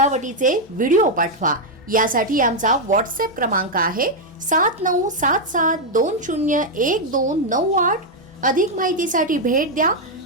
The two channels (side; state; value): both; normal; correlation 0.00